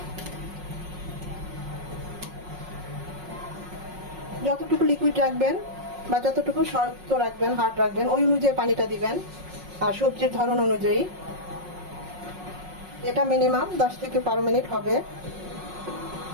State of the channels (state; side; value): late; left; 5.5 ms